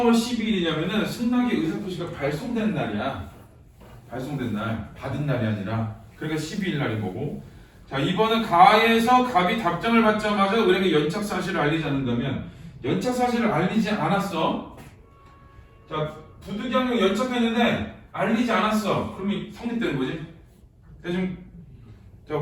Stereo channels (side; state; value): both; identical; correlation 1.00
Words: 12일이냐면은 승낙의 의사표시가 발송된 날이야. 발송된 날, 받은 날이 아니라. 그러니까 12일 날인 거고. 자, 2번은 가에서 갑이 답장을 받자마자 을에게 연착 사실을 알리지 않는다면 연착 사실을 알리지 않았어. 자, 부득이하게 연착했는데 알리지 않았어. 그러면 성립되는 거지. 대충 자,